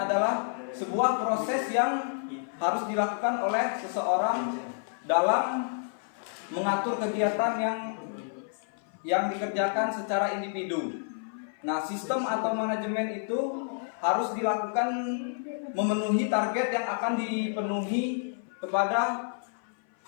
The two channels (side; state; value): right; silent; 56 dB below the other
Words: sebuah proses yang harus dilakukan oleh seseorang dalam mengatur kegiatan yang dikerjakan secara individu. Nah, sistem atau manajemen itu harus dilakukan memenuhi target yang akan dipenuhi kepada